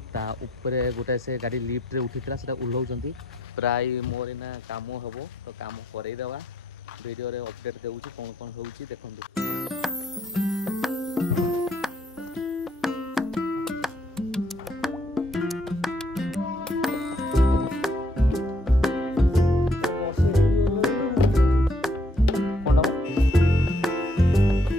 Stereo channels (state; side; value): normal; both; correlation 0.69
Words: ता ऊपर गोटे से गाड़ी लिफ्ट रे उठी से ओह्लाउंट प्राय मोर ना काम हम तो काम करईदेवा वीडियो रे अपडेट देउची कौन कौन होउची देखंतु।